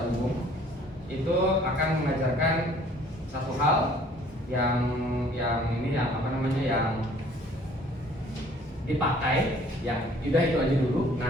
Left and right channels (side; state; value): both; normal; correlation 0.56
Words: umum itu akan mengajarkan satu hal yang dipakai, yang udah itu aja dulu.